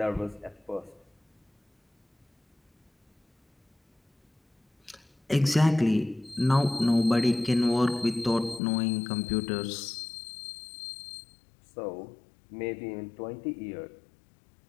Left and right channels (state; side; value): drops out; right; at 8.6 s